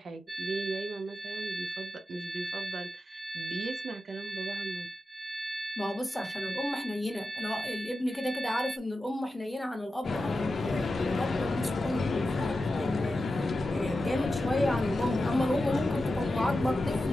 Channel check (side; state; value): both; normal; correlation 0.91